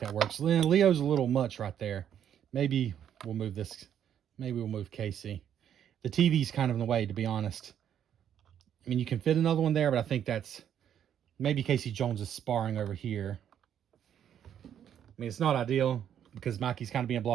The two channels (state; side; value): quieter; left; 9.5 dB